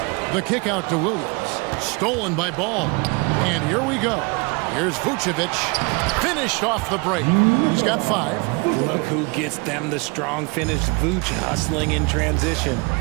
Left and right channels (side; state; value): left; quieter; 29.3 dB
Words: The kick out to Williams. Stolen by Ball. And here we go. Here's Vucevic. Finished off the break. He's got 5. Look who gets them the strong finish. Vuce hustling in transition.